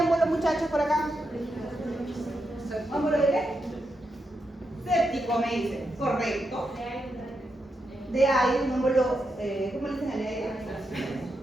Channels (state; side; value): normal; both; correlation 0.85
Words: muchachos, por acá. ¿Émbolo de qué? Séptico, me dicen. Correcto. De aire, un émbolo, ¿cómo le dicen al aire?